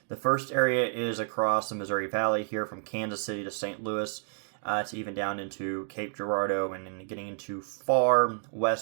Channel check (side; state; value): left; silent; digital silence